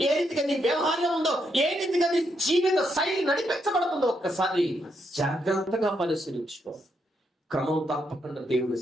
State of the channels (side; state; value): both; normal; correlation 0.79